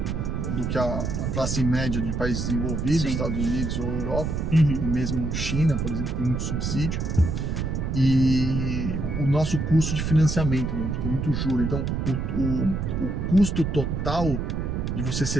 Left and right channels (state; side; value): noise; right; rumble, 1 dB below the sound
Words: que a classe média de países desenvolvidos, Estados Unidos ou Europa, e mesmo China, por exemplo, tem muito subsídio. E o nosso custo de financiamento, né? A gente tem muito juro. Então o custo total de você